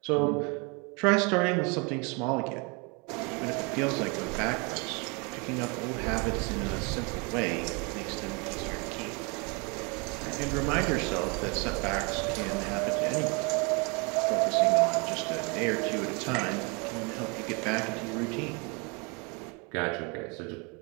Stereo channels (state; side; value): quieter; left; 31.4 dB